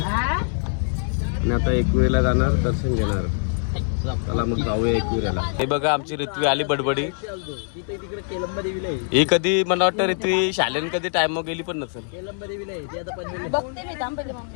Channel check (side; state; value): right; silent; 63 dB below the other